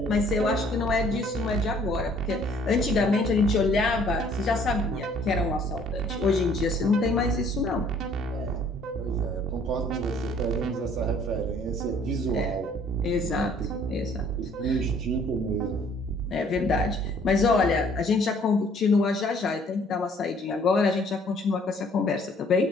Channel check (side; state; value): both; normal; correlation 0.59